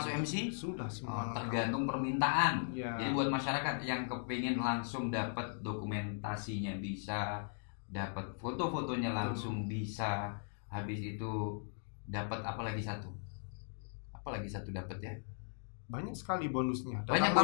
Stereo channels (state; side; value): silent; right; digital silence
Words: MC? Sudah semua. lengkap. Tergantung permintaan. Iya. Jadi buat masyarakat yang kepingin langsung dapat dokumentasinya bisa, dapat foto-fotonya langsung bisa, habis itu dapat apa lagi satu? Apa lagi satu dapat ya? Banyak sekali bonusnya. Banyak